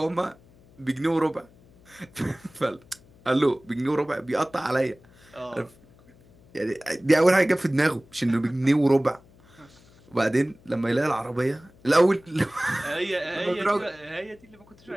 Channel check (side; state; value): left; noise; hum, 27 dB below the sound